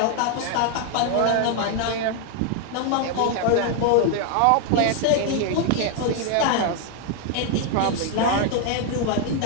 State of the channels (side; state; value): both; different; correlation 0.01